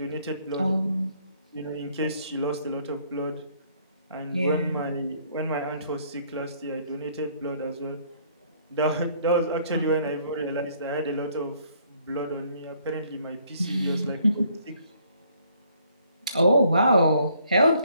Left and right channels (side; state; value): both; inverted; correlation -0.64